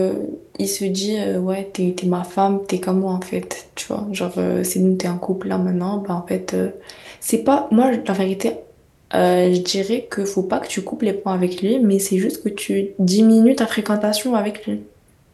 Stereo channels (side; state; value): both; identical; correlation 1.00